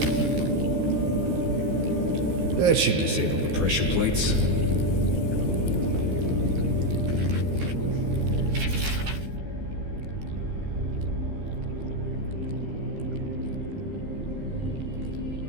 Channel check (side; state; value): left; late; 14 ms